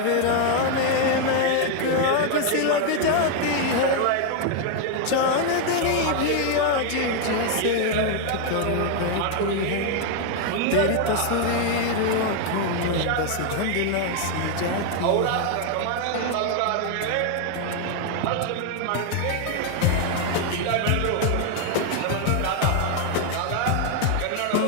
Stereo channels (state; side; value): different; both; correlation 0.00